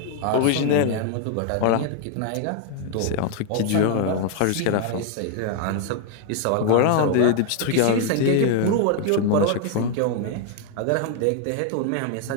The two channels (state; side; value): different; both; correlation 0.00